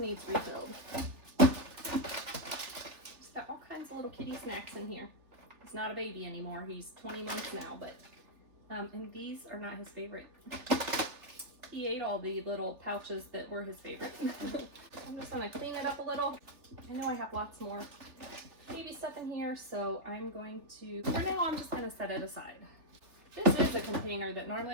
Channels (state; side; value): late; left; 3.4 ms